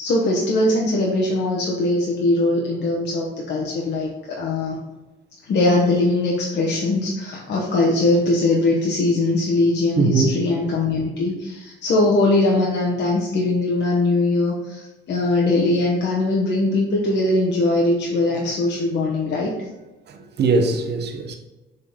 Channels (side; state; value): both; normal; correlation 0.42